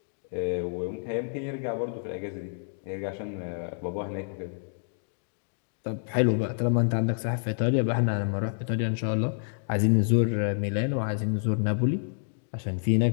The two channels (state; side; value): silent; right; digital silence